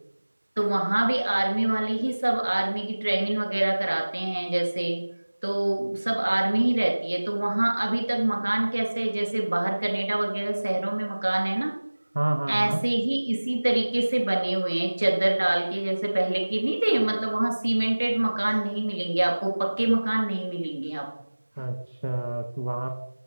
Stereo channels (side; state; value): both; inverted; correlation -1.00